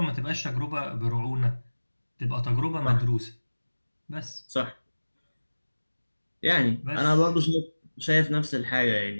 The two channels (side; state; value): both; inverted; correlation -1.00